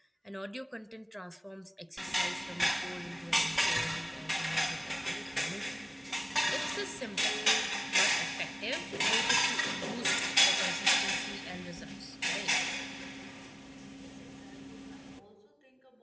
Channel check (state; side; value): identical; both; correlation 1.00